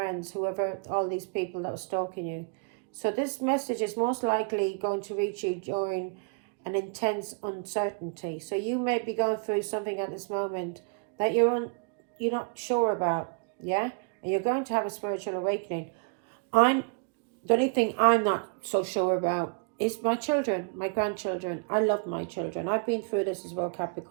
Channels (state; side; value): quieter; left; 36.4 dB